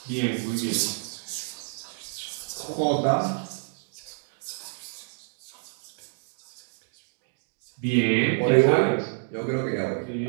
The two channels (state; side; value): silent; left; 59 dB below the other